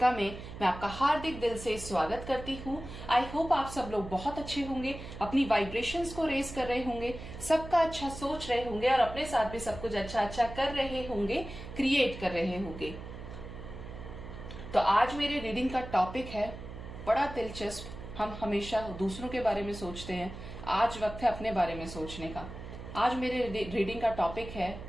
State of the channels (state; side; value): noise; right; hum, 11 dB below the sound